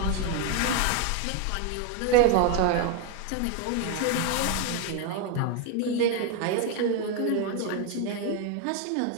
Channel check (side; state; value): both; different; correlation 0.01